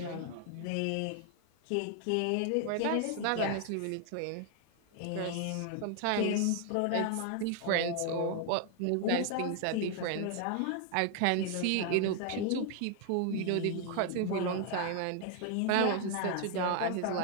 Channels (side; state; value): both; different; correlation 0.00